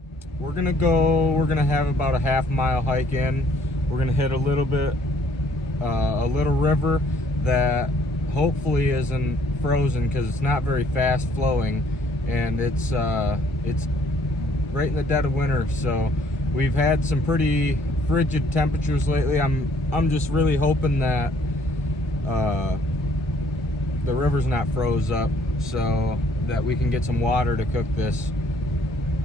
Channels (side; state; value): both; normal; correlation 0.62